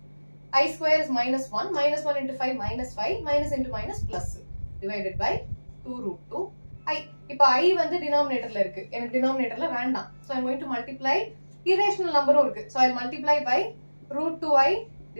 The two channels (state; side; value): inverted; both; correlation -1.00